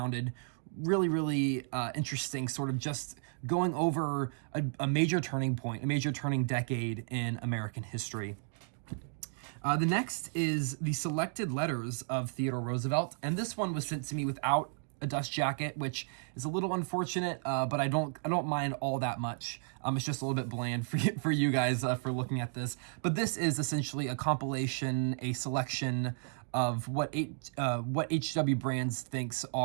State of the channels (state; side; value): silent; left; 55 dB below the other